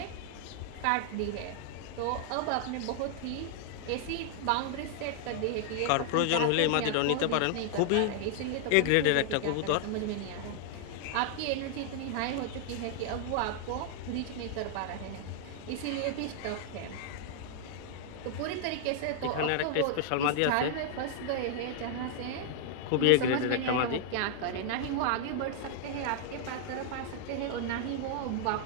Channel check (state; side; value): different; both; correlation -0.01